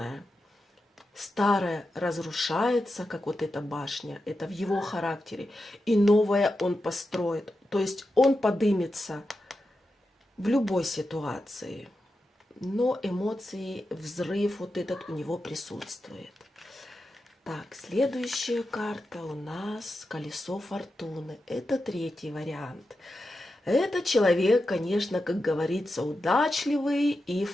Старое разрушается, как вот эта башня, это в его характере, и новое он построит. То есть он подымется в любой ситуации, но эмоции, взрыв вот этот у него присутствует. Так, следующая карта у нас колесо фортуны. Это третий вариант. Это человек, конечно, как говорится, удачливый и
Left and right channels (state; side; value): normal; both; correlation 0.89